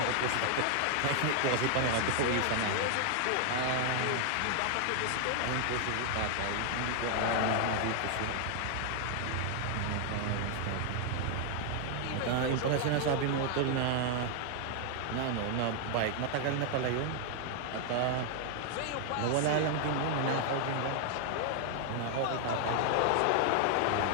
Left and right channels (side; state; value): both; different; correlation 0.00